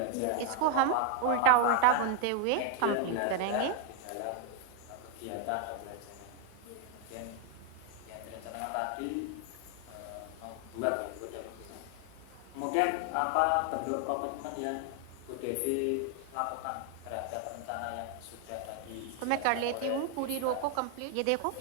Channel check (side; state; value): both; different; correlation 0.00